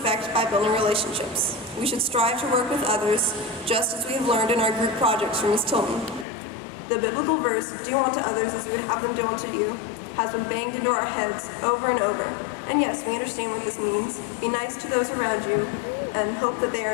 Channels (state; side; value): drops out; right; at 6.2 s